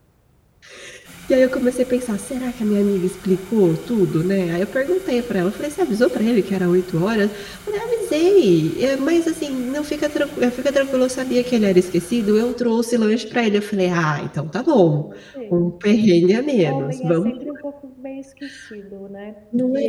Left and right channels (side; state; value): both; identical; correlation 1.00